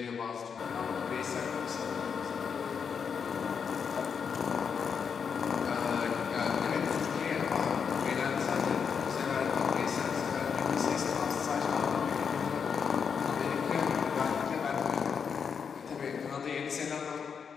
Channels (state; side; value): quieter; right; 6.5 dB